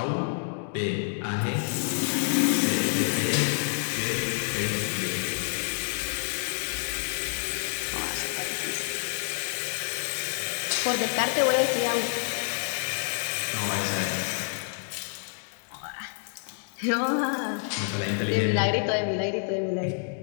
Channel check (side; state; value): right; silent; digital silence